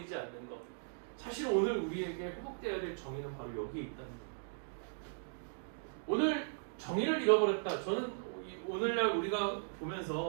않는 것. 사실 오늘 우리에게 회복되어야 될 정의는 바로 여기에 있다는 거예요. 오늘 정의를 잃어버렸다. 저는 오늘날 우리가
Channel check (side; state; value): left; silent; digital silence